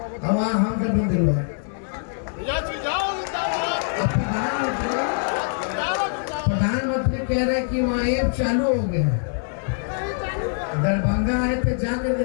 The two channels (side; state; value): right; silent; 62 dB below the other